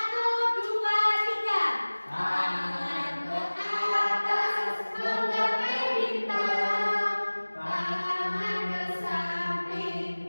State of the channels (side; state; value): both; inverted; correlation -1.00